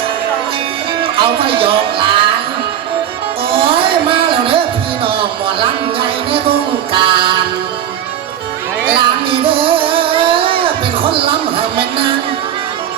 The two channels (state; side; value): quieter; left; 10.3 dB